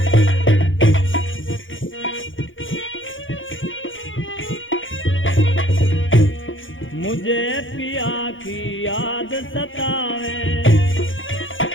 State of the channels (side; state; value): right; late; 0.57 ms